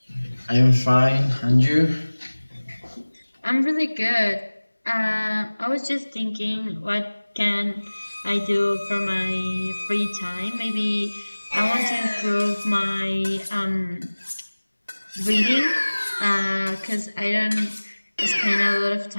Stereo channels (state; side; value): inverted; both; correlation -1.00